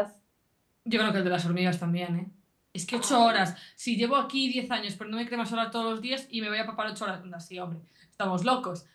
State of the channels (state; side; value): identical; both; correlation 1.00